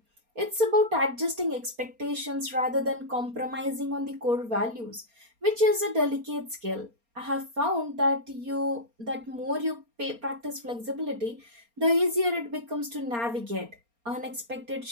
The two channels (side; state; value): left; late; 4.3 ms